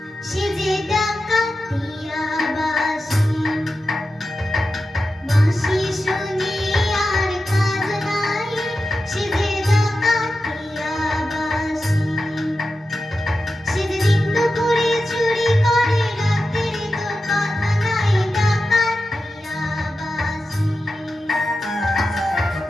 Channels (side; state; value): both; normal; correlation 0.92